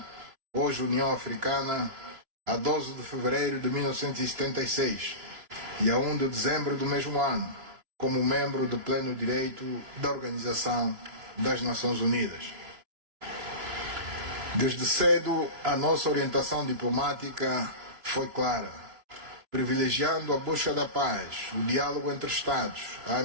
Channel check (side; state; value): left; late; 3.0 ms